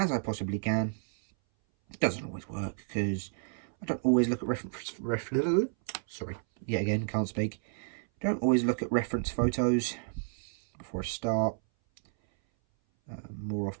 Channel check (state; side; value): silent; left; 57 dB below the other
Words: I possibly can. It doesn't always work because I don't always look at sorry, yet again, can't speak. Don't always look at reference photos before I start. More